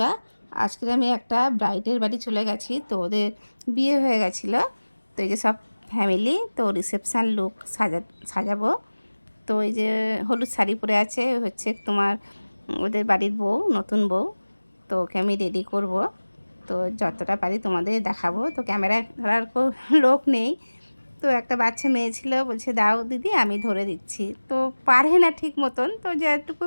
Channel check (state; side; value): inverted; both; correlation -1.00